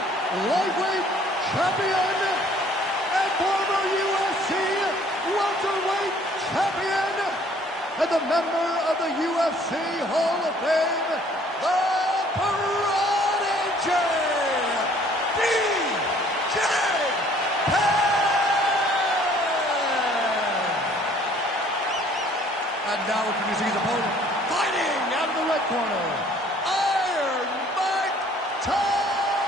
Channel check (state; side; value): normal; both; correlation 0.57